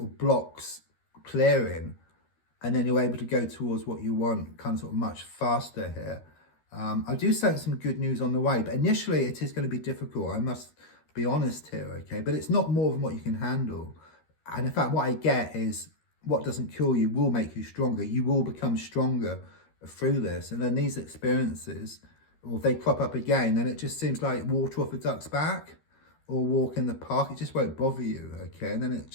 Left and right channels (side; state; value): right; late; 13 ms